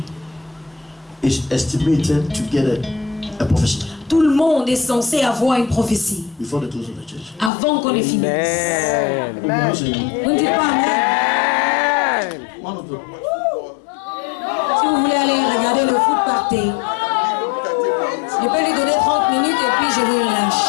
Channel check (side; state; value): right; drops out; at 7.5 s